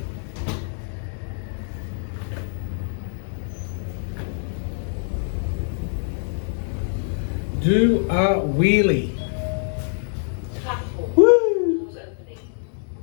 Do a wheelie.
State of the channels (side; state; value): right; silent; digital silence